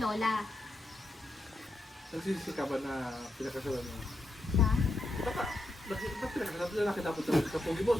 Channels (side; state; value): both; normal; correlation 0.84